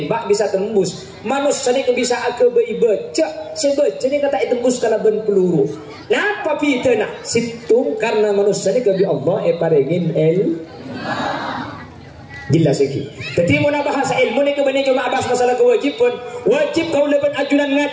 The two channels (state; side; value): identical; both; correlation 1.00